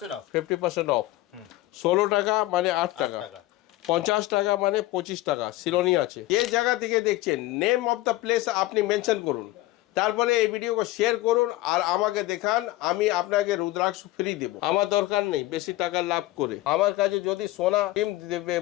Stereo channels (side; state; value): right; quieter; 17.3 dB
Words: 50% অফ। 16 টাকা মানে 8 টাকা, 50 টাকা মানে 25 টাকা। সিলোনি আছে। যে জায়গা থেকে দেখছেন নেম অফ দ্য প্লেস আপনি মেনশন করুন, তারপরে এই ভিডিওকে শেয়ার করুন আর আমাকে দেখান, আমি আপনাকে রুদ্রাক্ষ ফ্রি দেব। আমার দরকার নেই বেশি টাকা লাভ করে। আমার কাছে যদি সোনা ডিম দেবে